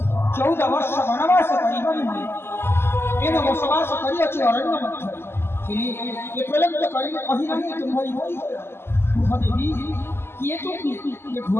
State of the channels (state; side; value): late; right; 0.12 ms